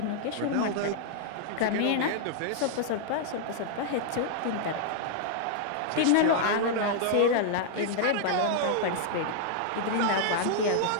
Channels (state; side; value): different; both; correlation -0.01